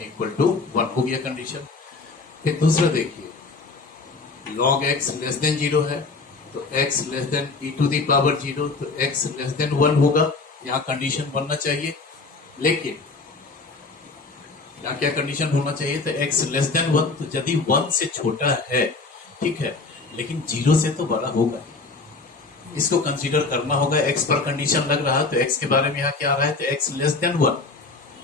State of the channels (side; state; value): right; quieter; 3.9 dB